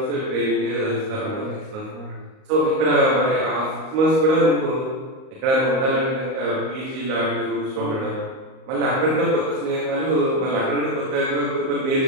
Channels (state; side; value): late; left; 38 ms